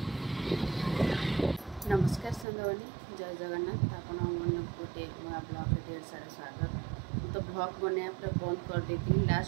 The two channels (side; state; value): left; drops out; at 2.5 s